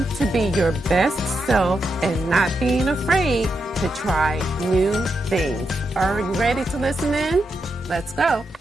to be your best self and not being afraid to try new things. Are you ready to listen in? Let's go.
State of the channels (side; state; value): both; normal; correlation 0.84